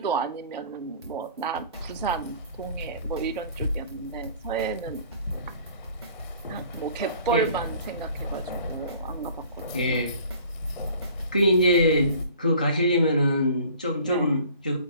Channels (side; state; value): both; inverted; correlation -0.49